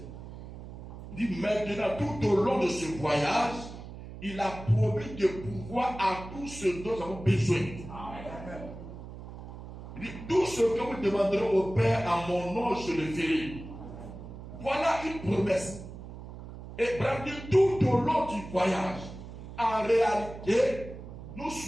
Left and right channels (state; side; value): noise; right; hum, 12 dB below the sound